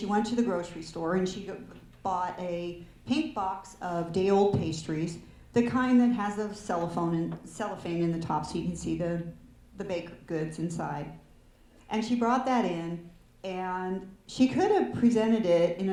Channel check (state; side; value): identical; both; correlation 1.00